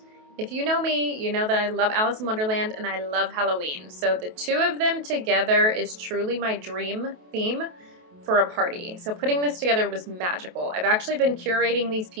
If you know me, you know that I love Alice in Wonderland and I love Halloween. So the two of them together is truly my dream theme for a party. So putting this together was magical. I've actually been curating these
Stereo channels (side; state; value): left; late; 28 ms